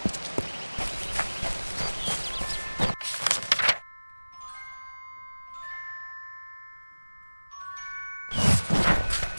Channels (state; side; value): inverted; both; correlation -1.00